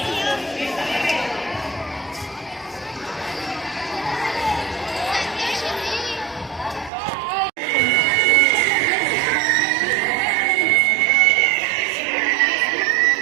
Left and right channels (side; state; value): left; drops out; at 6.9 s